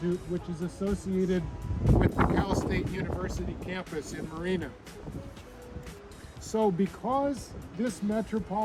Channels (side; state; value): both; identical; correlation 1.00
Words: which is associated with the Cal State University campus in Marina. So because this